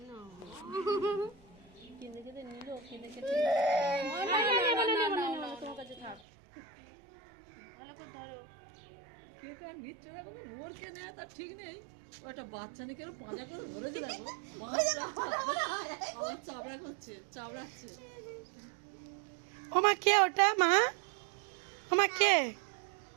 কেঁদে কেঁদে নিল কেঁদে কেঁদে তোমার কাছে থাক ভালো করে ধরো কেউ কার নিচ্ছে না বলে ওর কে নেবে তার ঠিক নেই ওটা বাচ্চা নিয়ে কেন পাজা করে ধরেছে দেখো চাবড়া করছে চাবড়াচ্ছে ও মা কে ওটা মা ও মা কে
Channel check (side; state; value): left; drops out; at 6.2 s